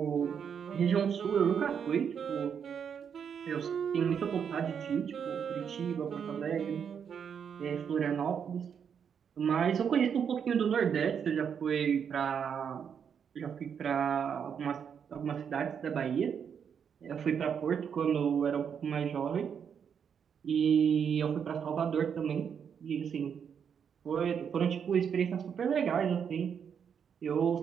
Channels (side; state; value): left; quieter; 7.4 dB